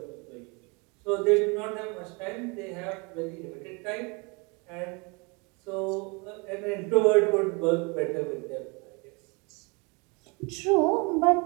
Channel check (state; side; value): quieter; left; 30.0 dB